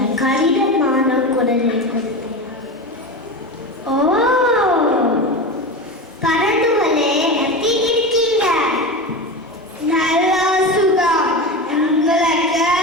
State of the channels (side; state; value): both; normal; correlation 0.24